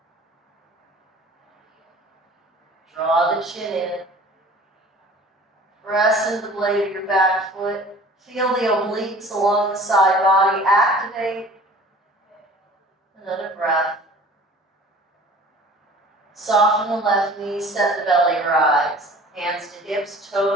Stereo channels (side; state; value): both; normal; correlation 0.46